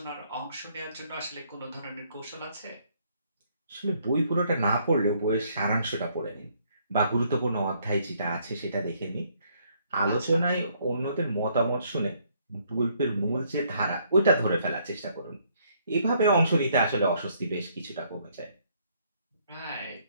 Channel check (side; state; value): both; inverted; correlation -0.68